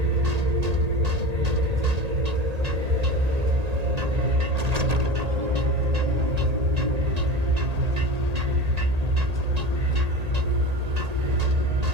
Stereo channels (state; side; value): late; left; 1.8 ms